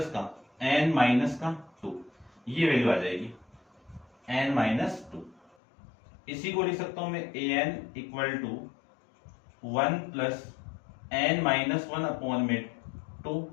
का n-2, ये वैल्यु आ जाएगी n-2। इसी को लिख सकता हूं मैं an equal to 1 plus n-1/2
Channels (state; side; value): drops out; right; at 5.5 s